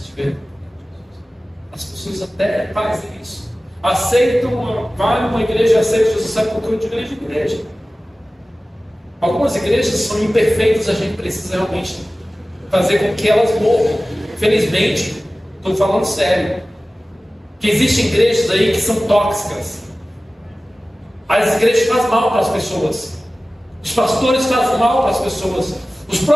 As pessoas até fazem isso. Aceitam, vai numa igreja, aceitam Jesus, sabe por que eu de igreja em igreja. Algumas igrejas são imperfeitas, a gente precisa realmente fazer com que elas morram. Infelizmente, estou falando sério, que existem igrejas aí que são tóxicas. As igrejas fazem mal para as pessoas, os pastores fazem mal para as pessoas, os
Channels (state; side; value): normal; both; correlation 0.96